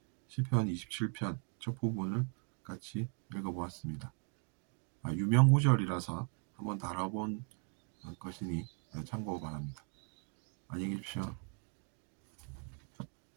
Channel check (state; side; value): quieter; left; 39.7 dB